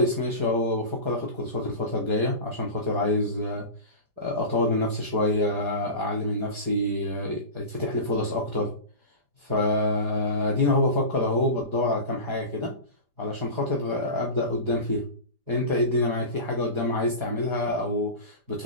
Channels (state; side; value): late; left; 5.0 ms